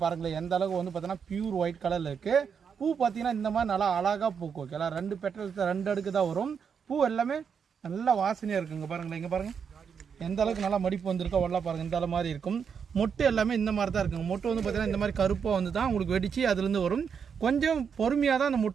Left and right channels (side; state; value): left; quieter; 6.8 dB